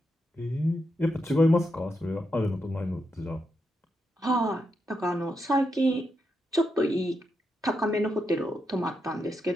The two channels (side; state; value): both; normal; correlation 0.84